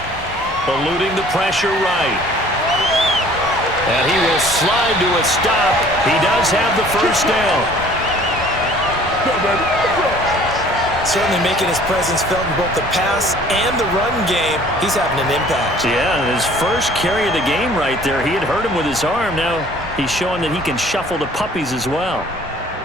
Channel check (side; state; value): both; normal; correlation 0.52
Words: Eluding the pressure right. And he will slide to a stop. He does have the 1st down. Certainly making his presence felt in both the pass and the run game. He's having an impact. Yeah, his first carry of the game right there. He had hurt him with his arm. Now he's showing that he can shuffle the puppies as well.